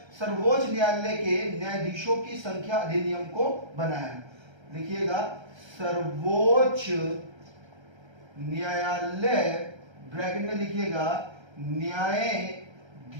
सर्वोच्च न्यायालय के न्यायाधीशों की संख्या अधिनियम को बनाया। लिखिएगा सर्वोच्च न्यायालय, ब्रैकेट में लिखिएगा न्यायाधीशों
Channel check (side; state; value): left; late; 1.3 ms